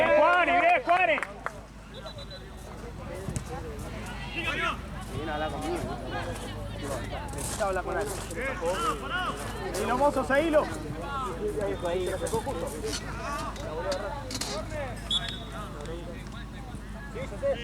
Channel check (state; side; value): identical; both; correlation 1.00